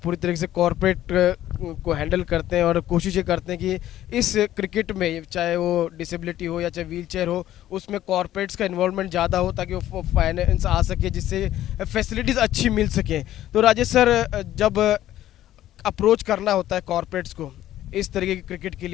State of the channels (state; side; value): quieter; right; 13.1 dB